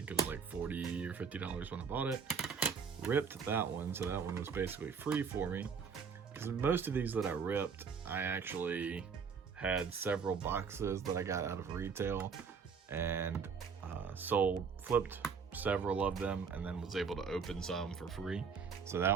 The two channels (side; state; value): left; quieter; 6.0 dB